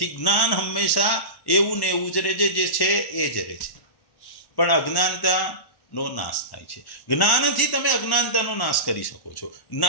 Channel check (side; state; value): right; late; 1.1 ms